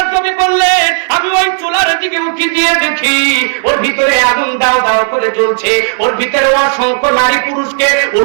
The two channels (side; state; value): left; silent; digital silence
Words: নবী বললেন, আমি ওই চুলার দিকে উঁকি দিয়ে দেখি ওর ভিতরে আগুন দাও দাও করে জ্বলছে। ওর ভিতরে অসংখ্য নারী পুরুষকে